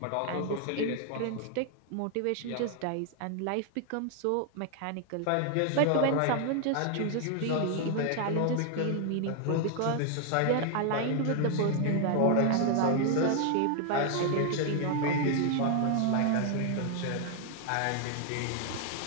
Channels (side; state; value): both; different; correlation 0.00